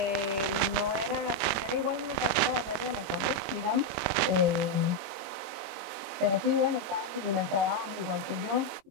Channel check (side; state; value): left; late; 21 ms